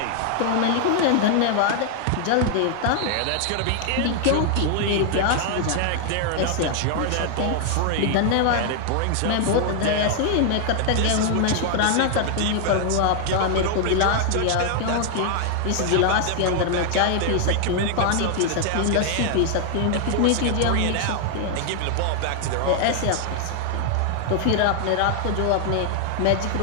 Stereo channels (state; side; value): different; both; correlation 0.00